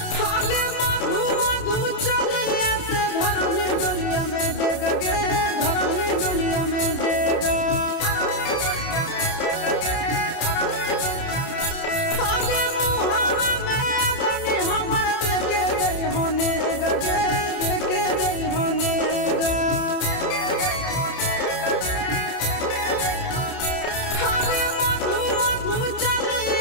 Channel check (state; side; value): late; right; 30 ms